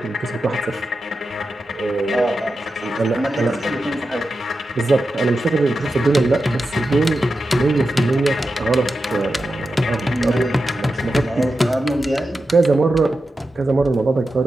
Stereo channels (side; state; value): both; normal; correlation 0.90